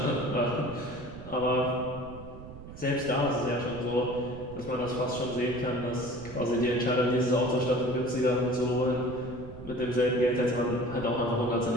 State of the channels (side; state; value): right; noise; rumble, 14 dB below the sound